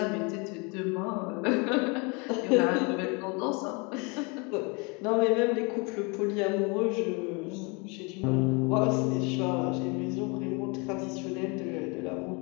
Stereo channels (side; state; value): right; quieter; 30.6 dB